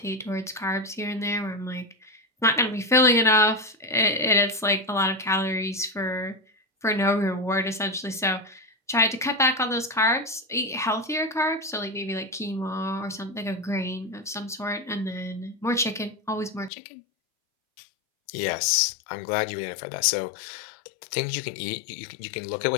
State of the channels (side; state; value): right; drops out; at 16.7 s